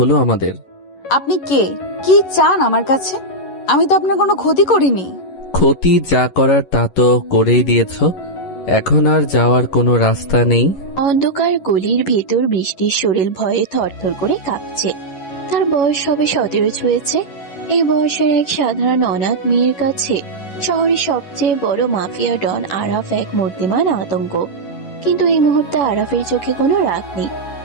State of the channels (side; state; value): right; late; 11 ms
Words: আমাদের। আপনি কে? কি চান আমার কাছে? আমি তো আপনার কোনো ক্ষতি করিনি। ক্ষতি যা করার তা তো করেই দিয়েছ, এখন আর যাওয়ার কোনো রাস্তা নেই। অন্ধকার গলির ভেতর বৃষ্টির শরীর ভয়ে থরথর করে কাঁপছে। তার বয়স সবে 17 ছুঁয়েছে। এই বয়সের এক সাধারণ অনাথ মেয়ের কাছে শহরের সবচেয়ে বড় মাফিয়া ডন আরাফ এক মূর্তিমান আতঙ্ক। কিন্তু এই মুহূর্তে আরাফের চোখে কোনো রাগ নেই,